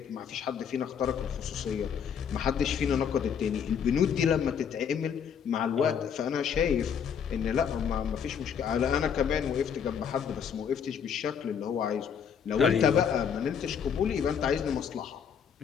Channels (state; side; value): quieter; right; 7.5 dB